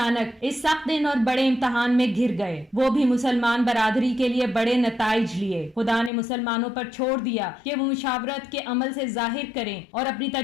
इस सख्त दिन और बड़े इम्तहान में घिर गए। वो भी मुसलमान बरादरी के लिए बड़े नताइज लिए। खुदा ने मुसलमानों पर छोड़ दिया कि वो मुशावरत के अमल से जाहिर करें और अपनी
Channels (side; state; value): right; drops out; at 6.1 s